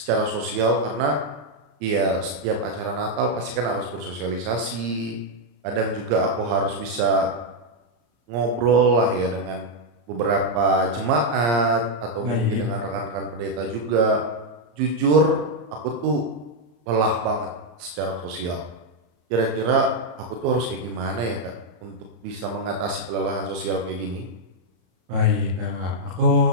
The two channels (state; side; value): late; left; 34 ms